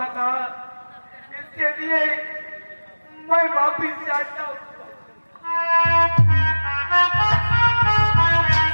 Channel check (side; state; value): both; inverted; correlation -1.00